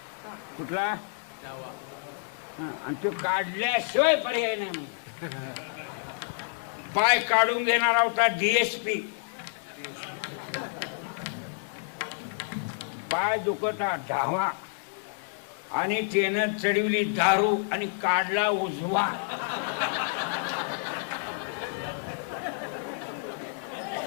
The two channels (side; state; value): right; silent; 58 dB below the other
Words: कुठला, आणि तो काढल्याशिवाय पर्याय नाही म्हणजे पाय काढून घेणारा होता DSP. पाय दुखता धावा आणि त्यानं चढवली दारू आणि काढला उजवा.